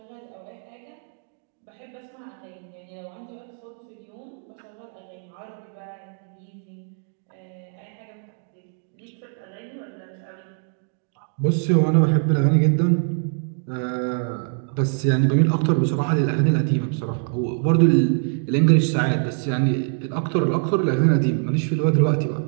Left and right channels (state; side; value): silent; left; 58 dB below the other